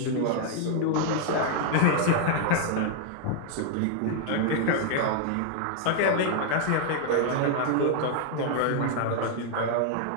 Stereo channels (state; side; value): different; both; correlation 0.00